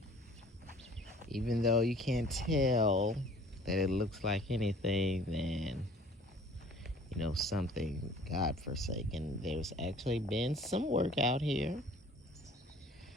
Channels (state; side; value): normal; both; correlation 0.51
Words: even though you can't tell that it looks like anything, then something God-forsaken. There's actually been some work out here.